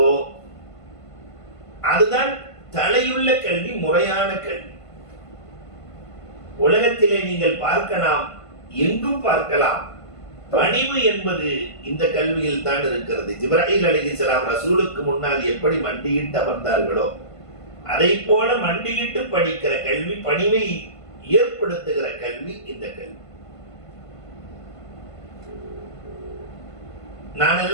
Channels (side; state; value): right; late; 1.5 ms